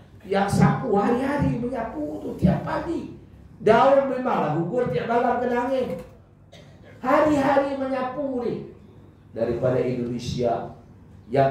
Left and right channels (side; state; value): both; identical; correlation 1.00